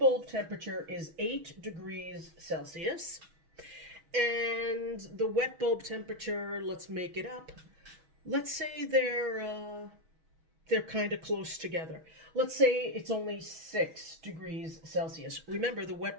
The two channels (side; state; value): left; late; 6.3 ms